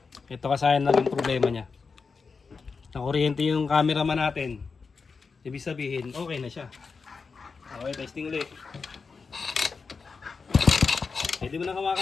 Ito kasi naging problema niya. Nakuryente yung cameraman natin. Ibig sabihin, okay na siya. Okay, testing uli. Pwede mo na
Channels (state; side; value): quieter; right; 4.9 dB